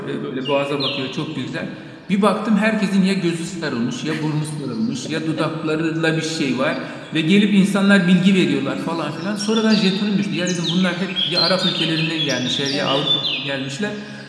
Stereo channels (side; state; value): both; identical; correlation 1.00